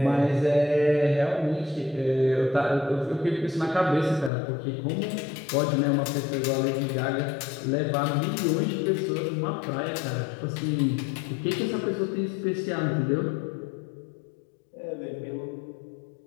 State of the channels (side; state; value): right; drops out; at 4.3 s